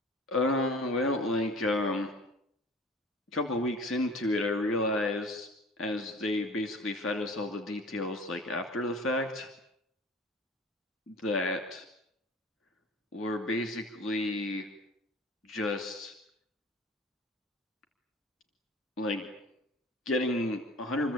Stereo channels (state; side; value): normal; both; correlation 0.44